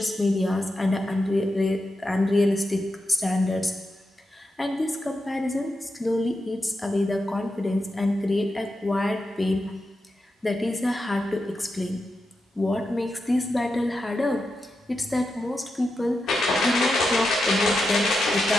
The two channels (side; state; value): both; normal; correlation 0.88